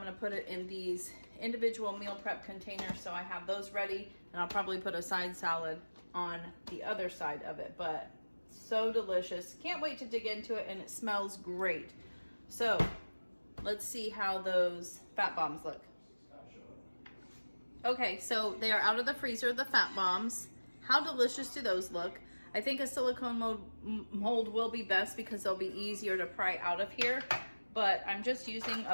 put it in these individual meal prep containers so I have those ready, and I'll probably put a side salad on the other side of it, but so delicious. Can't wait to dig into it, and it smells great. So let's see how those fat bombs look. Okay, so they are out of the freezer, the fat bombs. How delicious do those look? I think a silicone mold will be best because they'll be easier to pry out of here, but I'm just using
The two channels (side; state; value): both; inverted; correlation -1.00